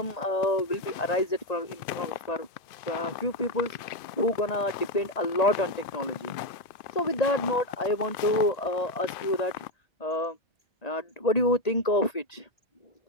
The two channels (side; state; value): right; late; 2.5 ms